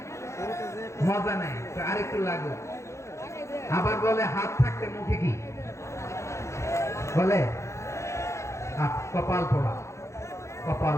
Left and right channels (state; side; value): late; right; 0.14 ms